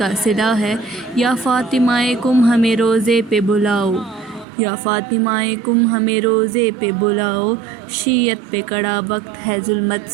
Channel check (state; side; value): drops out; left; at 4.5 s